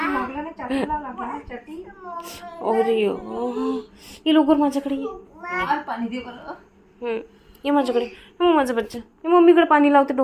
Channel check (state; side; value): identical; both; correlation 1.00